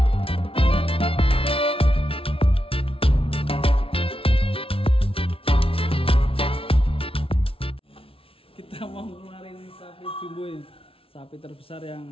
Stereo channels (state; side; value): late; right; 0.26 ms